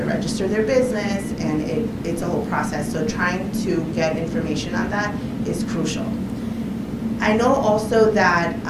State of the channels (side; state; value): both; identical; correlation 1.00